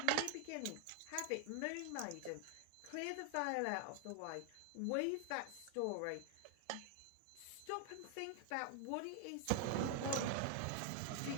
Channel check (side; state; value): both; different; correlation 0.00